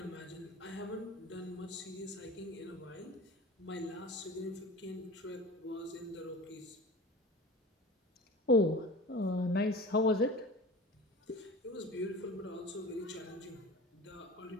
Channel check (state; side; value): normal; both; correlation 0.37